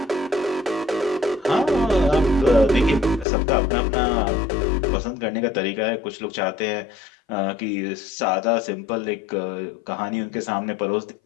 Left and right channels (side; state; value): right; drops out; at 3.2 s